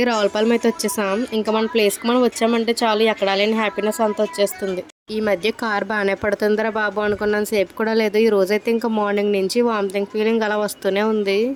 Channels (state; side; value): identical; both; correlation 1.00